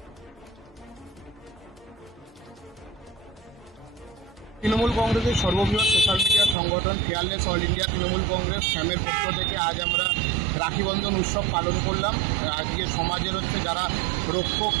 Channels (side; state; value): left; drops out; at 6.6 s